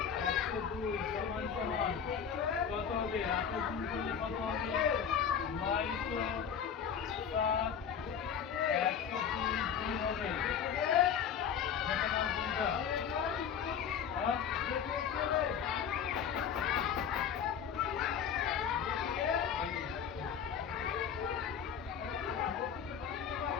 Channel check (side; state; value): right; quieter; 7.7 dB